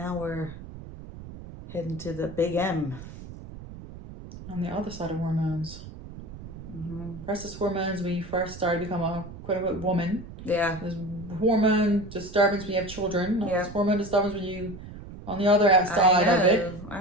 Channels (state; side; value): noise; right; rumble, 14 dB below the sound